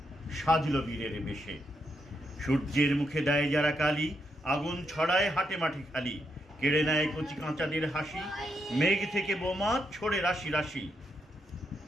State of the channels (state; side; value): normal; both; correlation 0.81